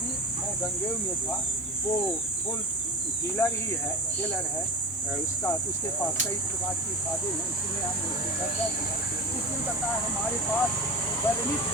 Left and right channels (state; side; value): normal; both; correlation 0.28